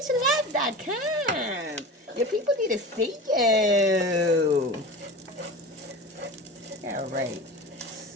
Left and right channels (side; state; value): both; normal; correlation 0.32